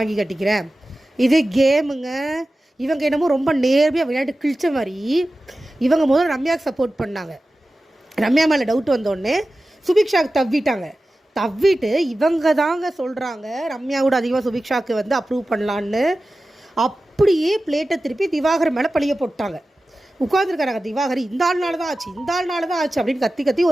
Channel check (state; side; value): normal; both; correlation 0.95